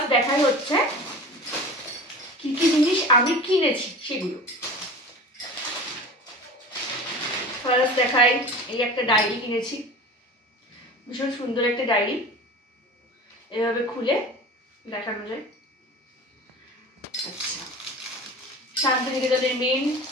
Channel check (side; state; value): both; normal; correlation 0.36